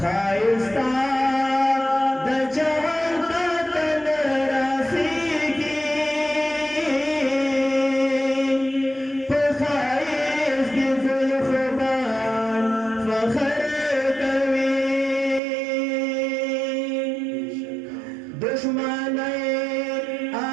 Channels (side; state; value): left; drops out; at 15.4 s